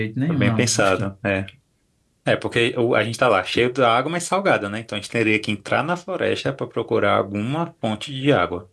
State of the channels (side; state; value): both; identical; correlation 1.00